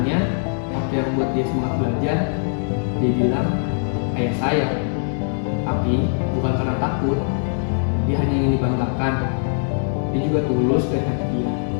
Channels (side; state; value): right; silent; digital silence